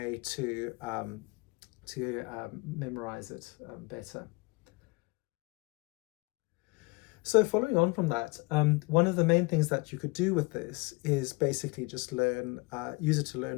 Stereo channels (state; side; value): quieter; right; 26.4 dB